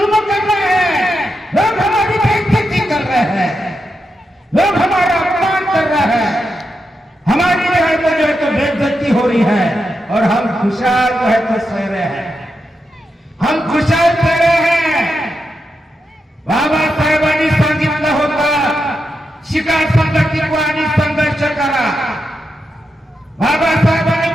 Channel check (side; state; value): both; normal; correlation 0.86